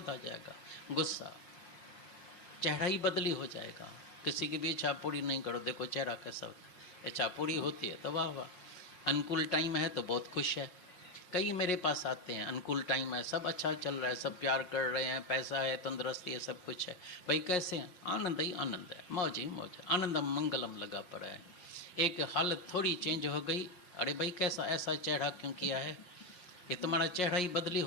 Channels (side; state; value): right; late; 5.6 ms